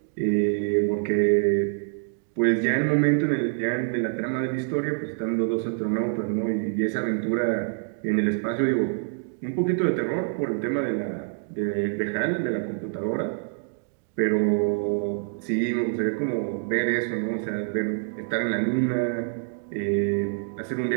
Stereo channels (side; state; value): left; silent; 61 dB below the other